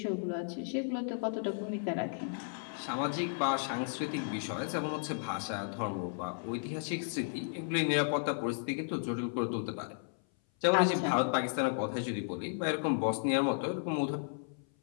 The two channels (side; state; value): right; silent; 55 dB below the other